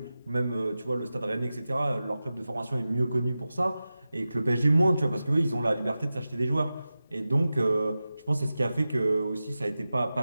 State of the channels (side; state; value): both; inverted; correlation -0.94